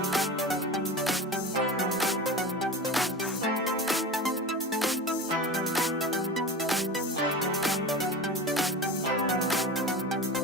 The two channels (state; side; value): normal; both; correlation 0.30